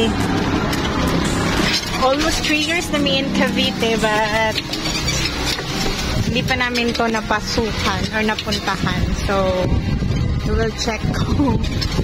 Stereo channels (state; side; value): identical; both; correlation 1.00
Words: Almost 3 years na may in Cavite, but hindi pa namin to napasukan or napuntahan. So, we will check kung